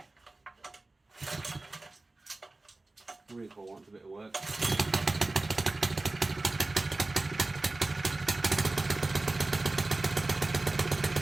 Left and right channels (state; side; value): quieter; left; 3.1 dB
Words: Recoil wants a bit of work.